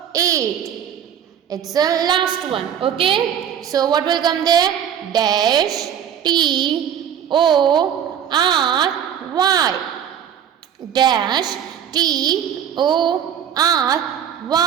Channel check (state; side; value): quieter; left; 9.0 dB